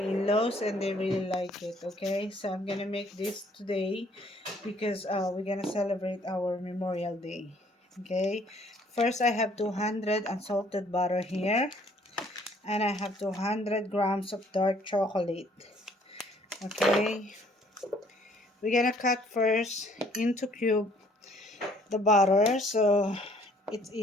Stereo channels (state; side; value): normal; both; correlation 0.61